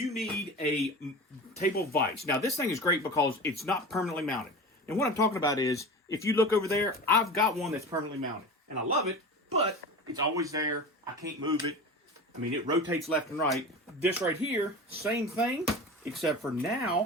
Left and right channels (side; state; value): both; normal; correlation 0.32